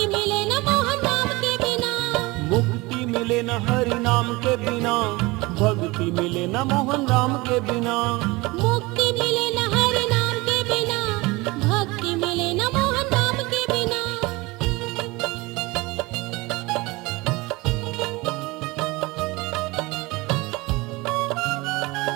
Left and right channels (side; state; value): left; quieter; 23.0 dB